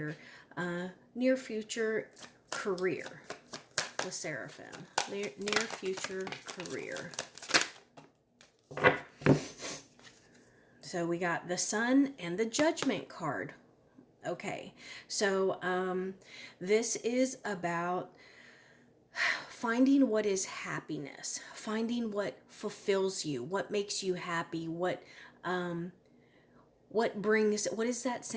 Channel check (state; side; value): identical; both; correlation 1.00